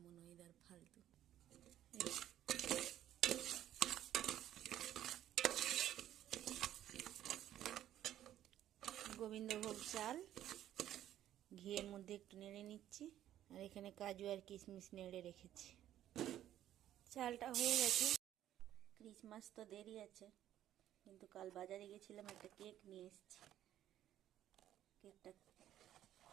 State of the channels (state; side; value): quieter; left; 12.1 dB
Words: ওয়েদার ফালতু। গোবিন্দভোগ চাল ঘিয়ের মধ্যে একটু নেড়ে নিচ্ছি, আর এখানে কাজু আর কিশমিশ নেড়ে রেখেছি। চালটা হয়ে গেছে। ক্রিসমাস তো দেরি আছে, কিন্তু কাল বাজারে গেছিলাম, একটা কেক নিয়ে এসেছি। কেকটা